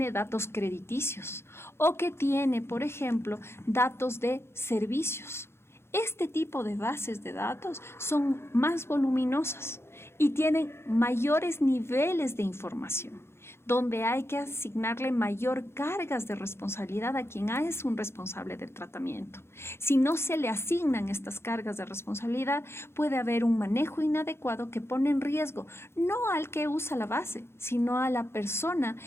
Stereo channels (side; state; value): right; late; 0.12 ms